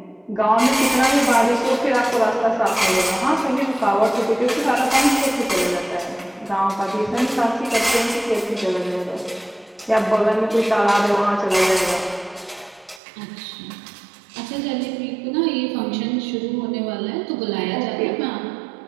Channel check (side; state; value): left; drops out; at 13.0 s